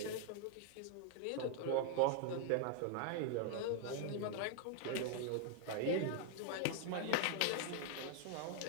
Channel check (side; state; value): both; different; correlation 0.00